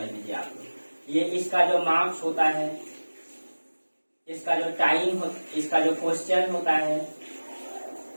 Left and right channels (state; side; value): inverted; both; correlation -1.00